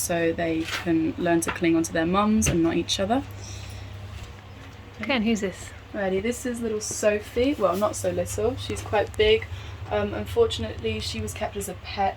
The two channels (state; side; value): identical; both; correlation 1.00